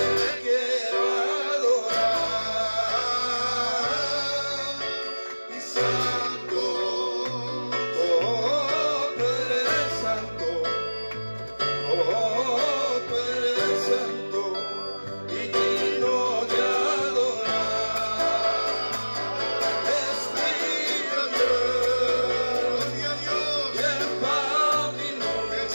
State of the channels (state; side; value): inverted; both; correlation -1.00